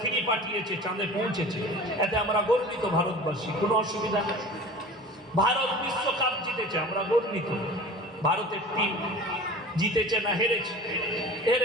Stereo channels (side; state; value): both; normal; correlation 0.39